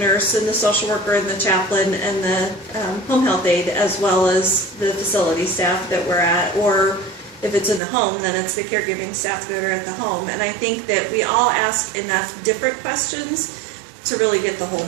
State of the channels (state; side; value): drops out; left; at 7.8 s